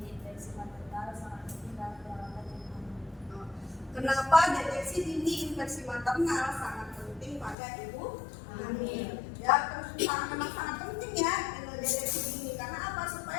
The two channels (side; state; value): right; drops out; at 7.6 s